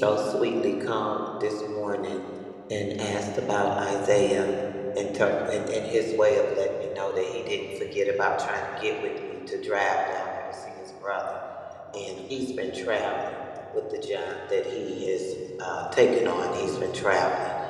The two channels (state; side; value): identical; both; correlation 1.00